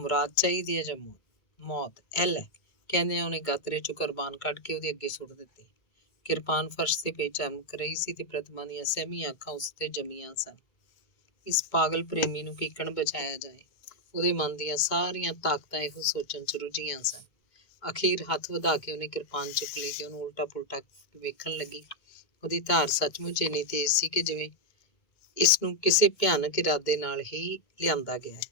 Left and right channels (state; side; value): late; right; 1.9 ms